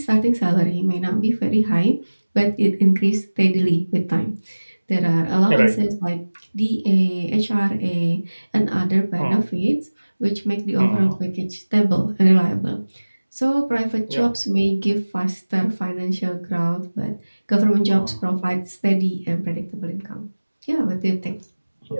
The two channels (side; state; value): both; inverted; correlation -1.00